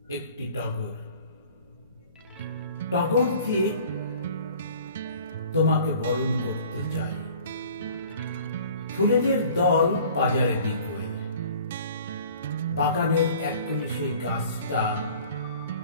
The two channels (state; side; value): inverted; both; correlation -0.49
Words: একটি টগর। টগরকে তোমাকে বরণ করতে চাই। ফুলেদের দল বাজারে বিকোয়, বাগানের এক কোণে সেই গাছটা